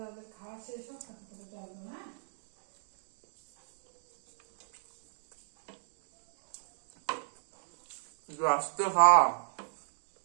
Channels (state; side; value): silent; left; digital silence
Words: খাওয়া শেষ হোক, তারপরে চলবো না। আস্তে খা।